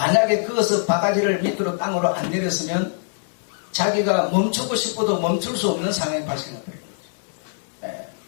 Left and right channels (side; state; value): right; silent; 63 dB below the other